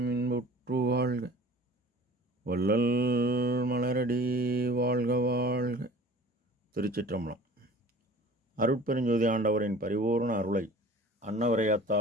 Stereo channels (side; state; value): both; normal; correlation 0.44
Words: இன்புற்று வாழ்க, வள்ளல் மலரடி வாழ்க வாழ்க. திருச்சிற்றம்பலம். அருட்பெருஞ்சோதி ஆண்டவரின் பரிபூர்ண அருளை